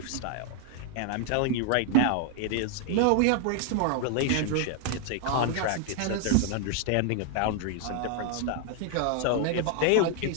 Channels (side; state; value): both; different; correlation 0.00